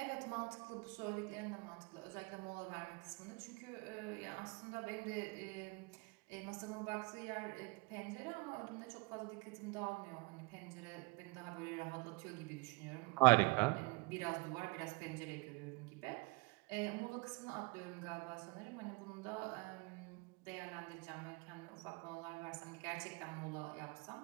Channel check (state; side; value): quieter; left; 27.3 dB